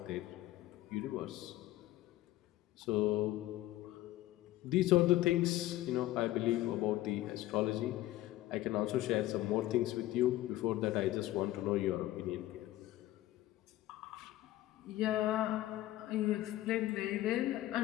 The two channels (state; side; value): quieter; right; 15.5 dB